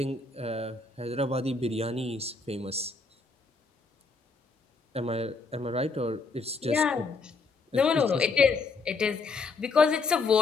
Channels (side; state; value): right; quieter; 4.0 dB